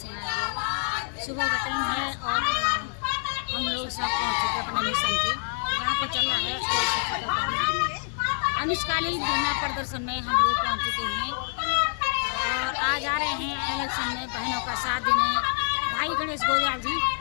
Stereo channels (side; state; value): right; silent; 58 dB below the other